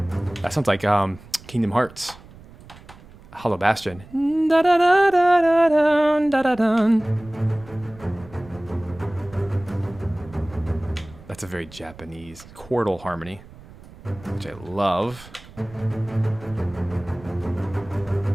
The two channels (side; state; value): right; noise; rumble, 20 dB below the sound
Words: That sounds like Kingdom Hearts. Hollow Bastion. That's a very Japanese chordal harmony, which I love.